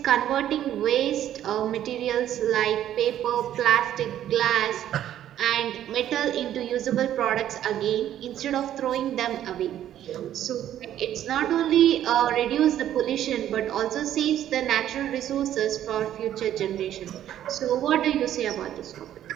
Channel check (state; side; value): quieter; left; 11.5 dB